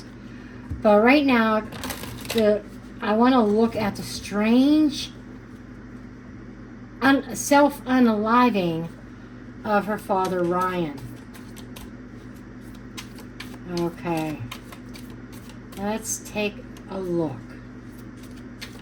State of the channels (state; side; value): identical; both; correlation 1.00